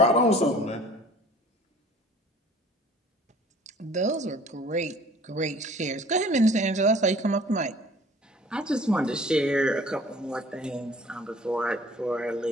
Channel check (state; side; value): normal; both; correlation 0.50